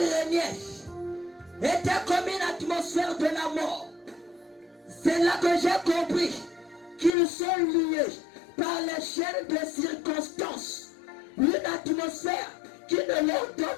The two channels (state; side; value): drops out; right; at 7.1 s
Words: était comme une atmosphère de la mort. C'est là que j'ai compris qu'ils sont liés par les chaînes de circonstances. Une atmosphère qui ne leur